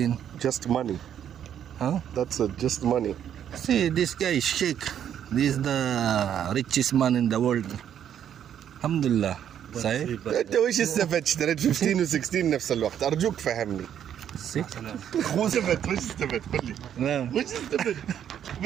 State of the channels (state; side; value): quieter; left; 9.5 dB